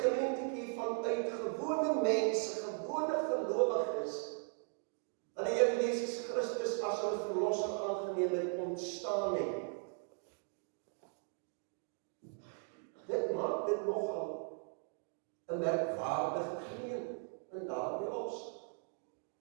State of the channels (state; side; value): silent; left; 52 dB below the other